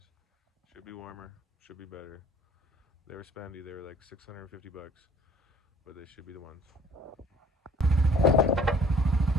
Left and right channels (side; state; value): both; normal; correlation 0.54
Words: Should be warmer, should be better. They were spendy, they were like 650 bucks, but they should be the ones.